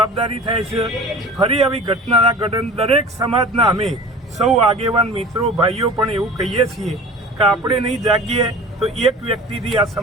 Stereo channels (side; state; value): both; normal; correlation 0.40